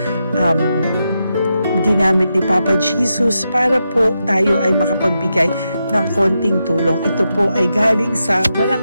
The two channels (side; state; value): both; inverted; correlation -0.86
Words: ginamit ni Papa Jesus para po tayo ay makapagbigay ng konting tulong. Ito po ay galing sa walang